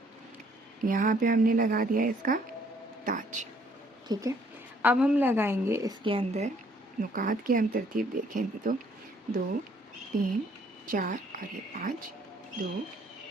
यहाँ पे हमने लगा दिया इसका ताज। ठीक है, अब हम लगाएंगे इसके अंदर नुकात की हम तरतीब देखें तो 2 3 4 और ये 5, 2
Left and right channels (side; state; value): both; normal; correlation 0.63